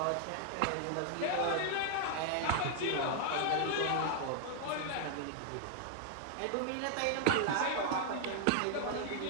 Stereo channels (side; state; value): both; different; correlation 0.00